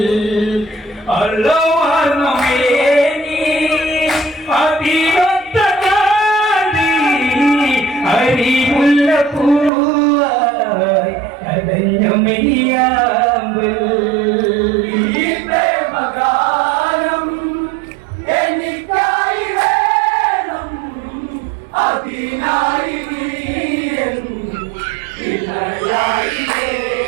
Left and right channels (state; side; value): drops out; left; at 9.7 s